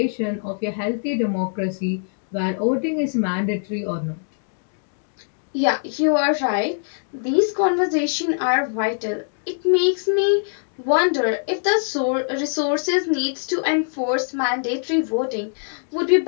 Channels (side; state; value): right; silent; digital silence